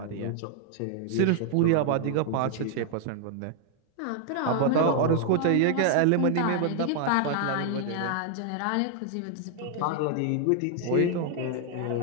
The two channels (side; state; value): both; different; correlation 0.00